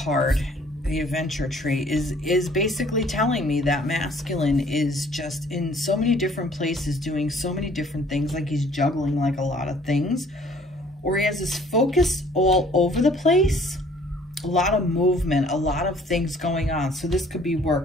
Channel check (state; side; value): normal; both; correlation 0.57